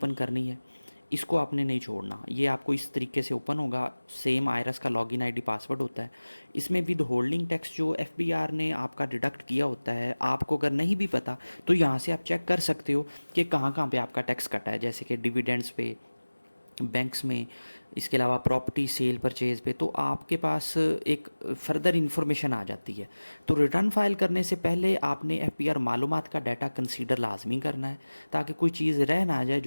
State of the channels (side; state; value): both; inverted; correlation -1.00